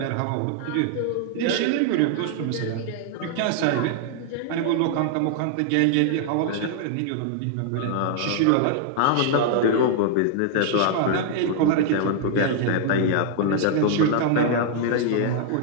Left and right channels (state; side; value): different; both; correlation 0.00